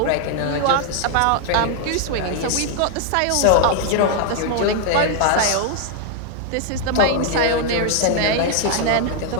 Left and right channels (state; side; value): different; both; correlation 0.00